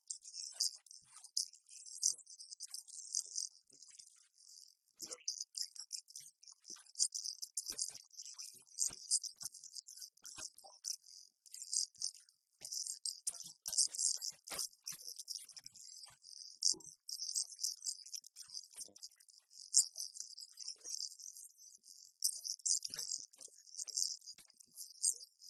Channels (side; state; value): both; identical; correlation 1.00